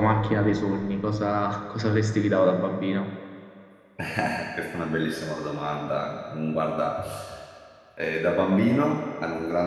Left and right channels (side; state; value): both; identical; correlation 1.00